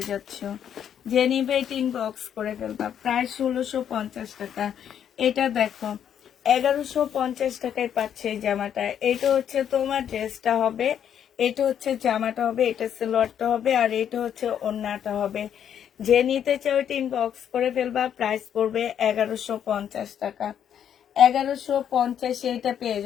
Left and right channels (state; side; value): quieter; right; 9.1 dB